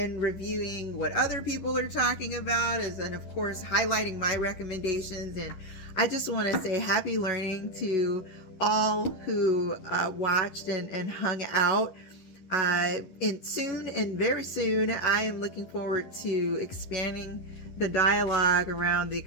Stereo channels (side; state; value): right; late; 11 ms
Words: reviewing what other people are talking about, and of course highlighting my recommendations. And I just want to say happy learning to all who watched and hung out. And very soon, I am looking forward to expanding the dialogue around the